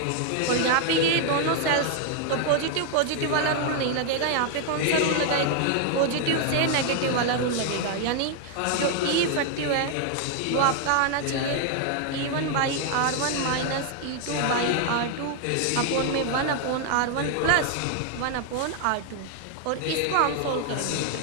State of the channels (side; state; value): both; different; correlation 0.00